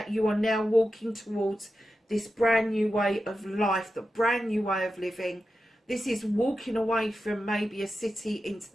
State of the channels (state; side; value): normal; both; correlation 0.91